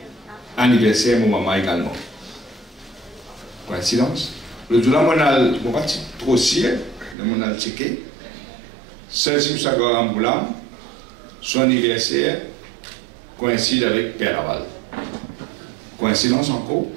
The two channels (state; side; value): drops out; left; at 7.2 s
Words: anniversaire de mon maman également. Coïncidence. Le jour là, je ne pas trop sûr, je vais checker. Sergi Sagor Amboulam, son anniversaire coïncide avec Père Laval. Coïncidence encore.